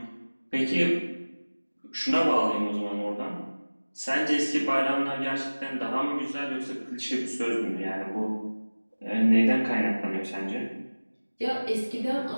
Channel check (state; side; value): inverted; both; correlation -1.00